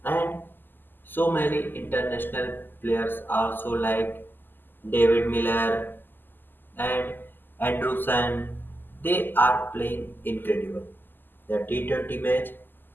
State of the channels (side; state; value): right; late; 0.092 ms